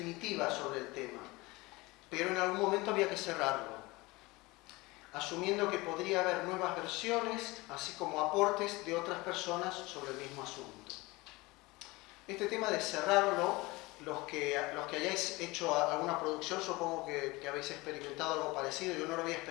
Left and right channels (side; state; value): right; quieter; 22.4 dB